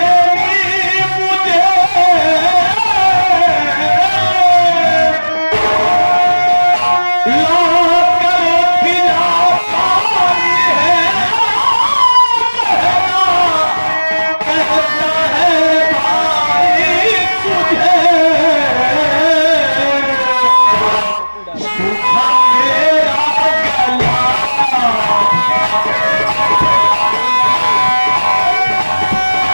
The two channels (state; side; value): inverted; both; correlation -1.00